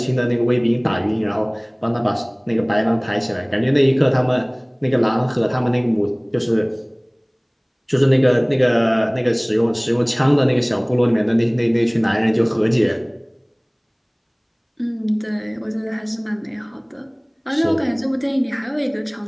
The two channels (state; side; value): identical; both; correlation 1.00